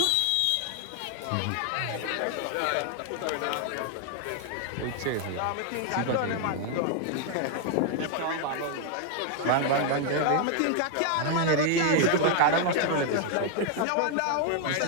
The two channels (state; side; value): different; both; correlation 0.00